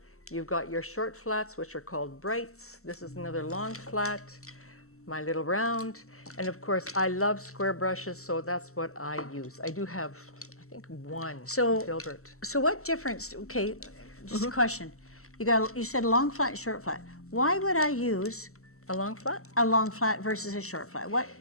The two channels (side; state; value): right; late; 0.63 ms